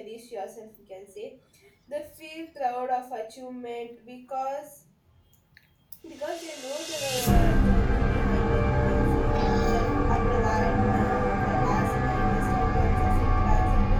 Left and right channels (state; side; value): identical; both; correlation 1.00